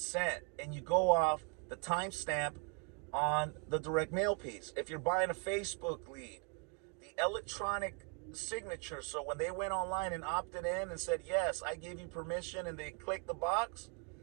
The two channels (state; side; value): quieter; left; 34.4 dB